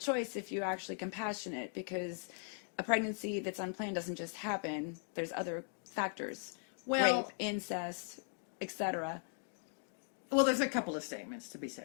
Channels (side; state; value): right; silent; 52 dB below the other